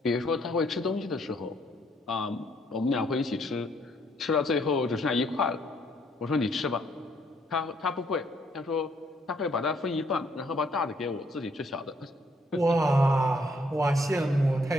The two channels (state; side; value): normal; both; correlation 0.68